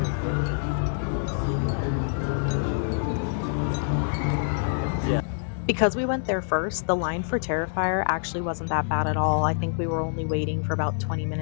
Yeah. Because we went there first, the line for Terrifier actually wasn't that bad at all. I think we were only waiting for about 20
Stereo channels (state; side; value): silent; right; digital silence